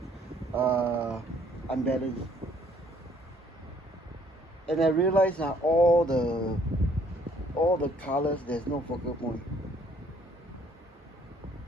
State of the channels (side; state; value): both; normal; correlation 0.63